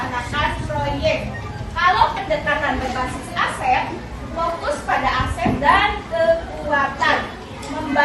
proyek. Kalau pendekatan berbasis aset, fokus pada aset dan kekuatan.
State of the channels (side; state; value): both; identical; correlation 1.00